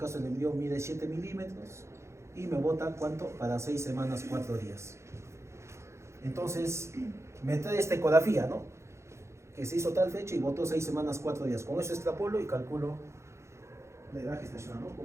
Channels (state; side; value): late; left; 0.13 ms